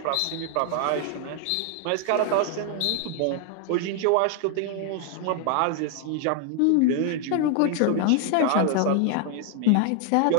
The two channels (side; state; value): both; different; correlation 0.00